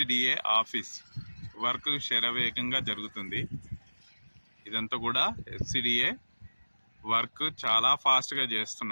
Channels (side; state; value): both; inverted; correlation -1.00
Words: ఆఫీస్ వర్క్ శరవేగంగా జరుగుతుంది. ఇదంతా కూడా ఎఫ్సిడిఏ వర్క్ చాలా ఫాస్ట్గా